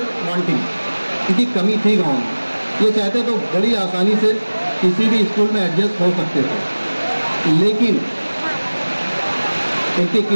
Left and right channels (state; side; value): inverted; both; correlation -1.00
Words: wanting, इनकी कमी थी गाँव में। ये चाहते तो बड़ी आसानी से किसी भी स्कूल में एडजस्ट हो सकते थे, लेकिन इनकी